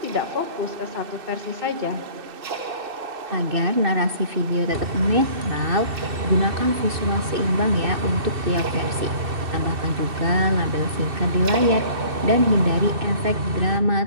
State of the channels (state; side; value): late; left; 2.6 ms